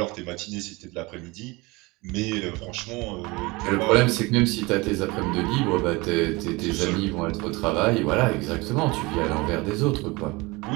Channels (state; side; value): quieter; left; 23.9 dB